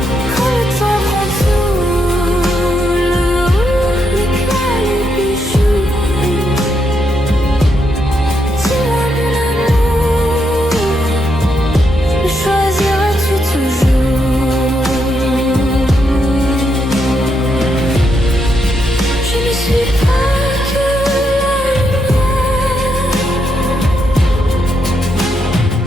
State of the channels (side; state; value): both; normal; correlation 0.80